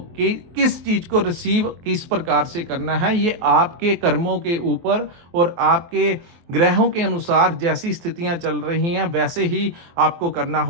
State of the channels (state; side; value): late; left; 23 ms